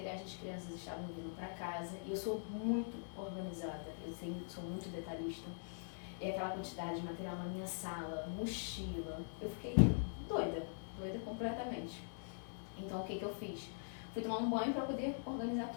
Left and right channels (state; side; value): silent; right; digital silence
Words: das crianças estavam vindo para casa e eu sou muito organizada, sou muito detalhista. E aquela quantidade de material na minha sala, mochila, eu fiquei doida completamente. Então o que eu fiz? Fui tomar um banho para poder organizar